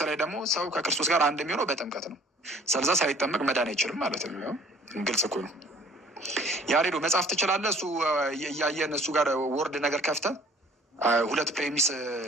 ላይ ደግሞ ሰው ከክርስቶስ ጋር አንድ የሚሆነው በጥምቀት ነው። ስለዛ ሳይጠመቅ መዳን አይችልም ማለት ነው። ግልጽ እኮ ነው። ያሬዶ መጽሐፍ ትችላለህ። እሱ እያየን እሱ ጋር ወርድ ነገር ከፍተህ ሁለት ፕሬሚስ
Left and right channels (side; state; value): both; normal; correlation 0.53